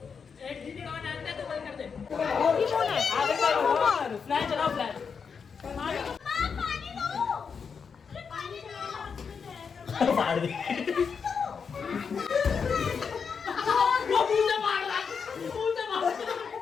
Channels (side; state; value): right; quieter; 6.0 dB